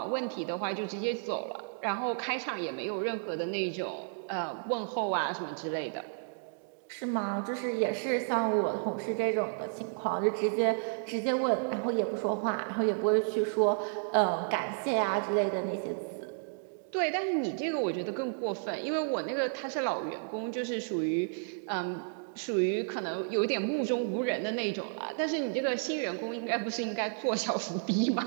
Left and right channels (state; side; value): silent; left; digital silence